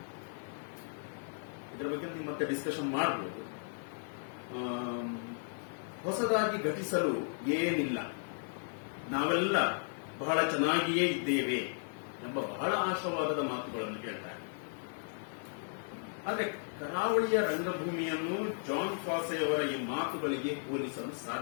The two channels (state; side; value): silent; right; digital silence